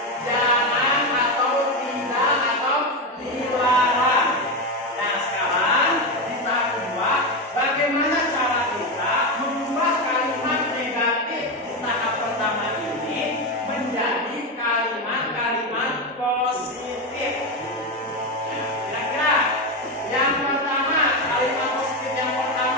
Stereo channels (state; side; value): normal; both; correlation 0.13